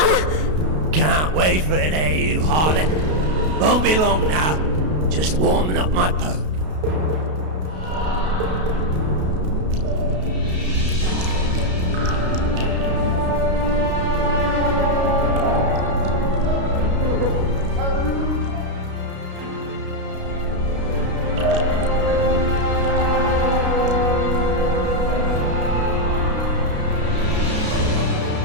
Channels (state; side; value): late; left; 32 ms